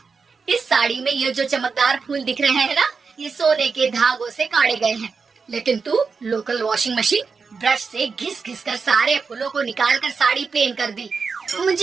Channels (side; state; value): left; quieter; 5.1 dB